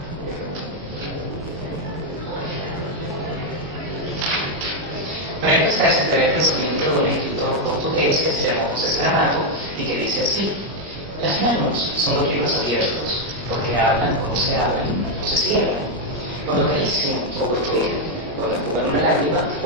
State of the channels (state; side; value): normal; both; correlation 0.01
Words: Para empezar, se trae el pensamiento de un escritor portugués que se llamó José Saramago y que dice así: las manos son los libros abiertos, porque hablan cuando se abren o se cierran, cuando acarician o protegen, cuando enjugan una lágrima